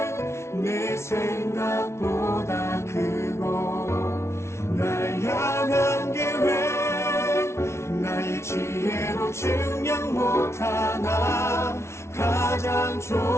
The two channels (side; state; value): right; late; 0.13 ms